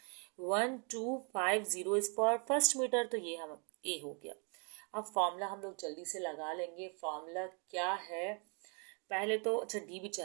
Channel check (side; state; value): left; quieter; 36.5 dB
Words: 1250 इज फॉर फर्स्ट मीटर, तो ये हम ए हो गया। अब फॉर्मूला हम लोग जल्दी से लगा लेंगे। फॉर्मूला क्या है? पहले तो अच्छा डी भी